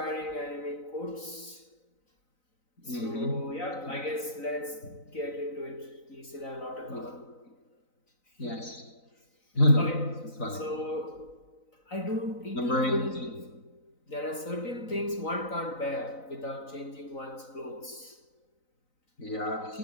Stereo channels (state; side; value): late; right; 4.0 ms